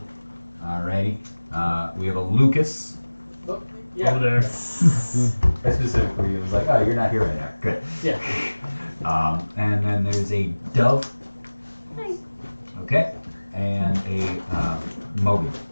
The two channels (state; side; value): inverted; both; correlation -1.00